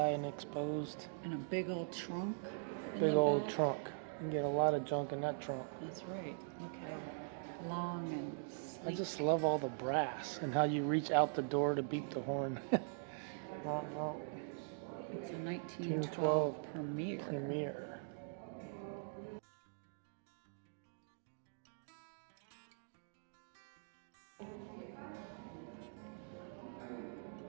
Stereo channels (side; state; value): left; silent; digital silence